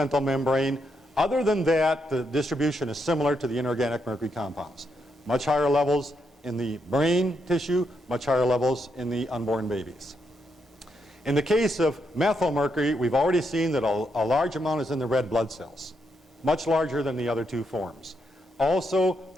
membrane. Other than that, the distribution is similar to the inorganic mercury compounds. Much higher levels in the brain tissue, much higher levels in the unborn babies. In the case of methylmercury, we've already seen that a large amount is in the red blood cells, much larger than the other two forms. Also,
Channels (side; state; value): both; normal; correlation 0.79